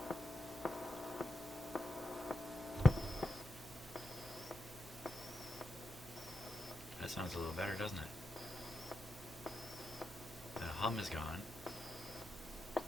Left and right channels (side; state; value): both; normal; correlation 0.88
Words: That sounds a little better, doesn't it? The hum is gone.